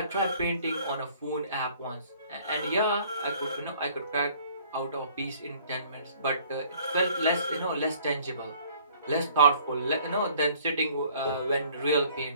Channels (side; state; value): both; inverted; correlation -0.56